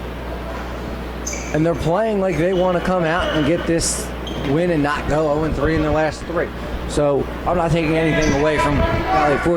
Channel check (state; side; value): identical; both; correlation 1.00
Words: and they're playing like they want to come out and get this win and not go 0-3 in their last 3. So I'm not taking anything away from Valley